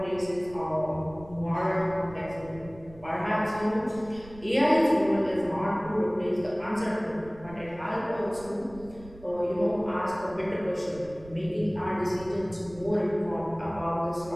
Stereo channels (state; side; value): noise; right; rumble, 19 dB below the sound